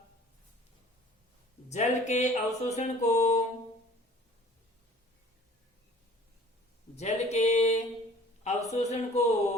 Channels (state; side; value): normal; both; correlation 0.49